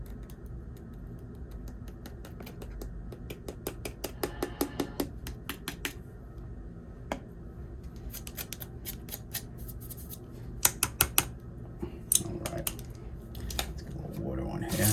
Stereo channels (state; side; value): identical; both; correlation 1.00